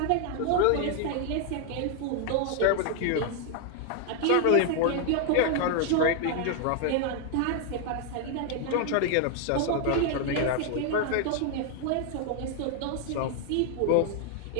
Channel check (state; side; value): different; both; correlation 0.00